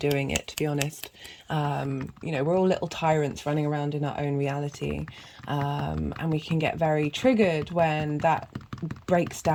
it, to be honest. You know, we're all little tyrants running around in our own reality. And we can get very triggered when that breaks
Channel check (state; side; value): identical; both; correlation 1.00